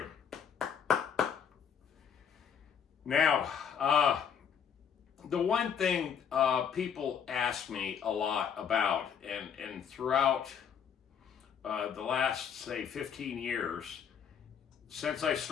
Now, the one thing people ask me a lot about, and throughout the last, say, 15 years, since I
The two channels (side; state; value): right; quieter; 7.6 dB